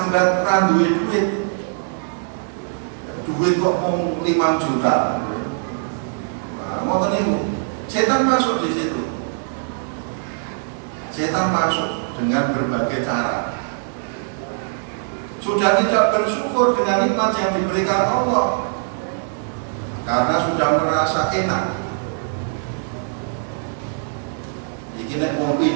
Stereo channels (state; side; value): silent; left; digital silence